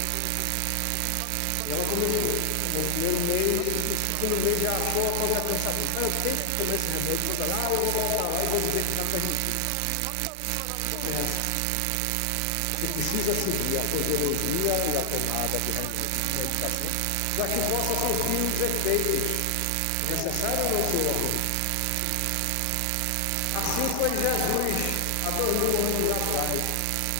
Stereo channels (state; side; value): different; both; correlation 0.00